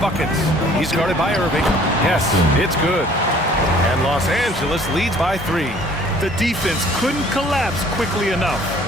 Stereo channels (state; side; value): normal; both; correlation 0.55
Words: He's guarded by Irving. Yes, it's good. And Los Angeles leads by 3. The defense couldn't collapse quickly enough.